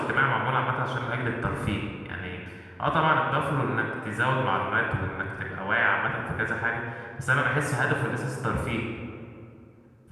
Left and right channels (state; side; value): identical; both; correlation 1.00